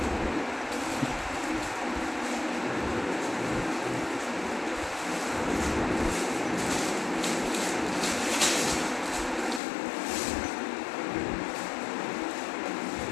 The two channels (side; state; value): right; drops out; at 9.6 s